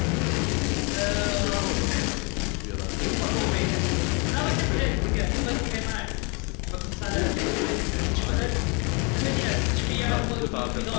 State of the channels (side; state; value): right; quieter; 32.0 dB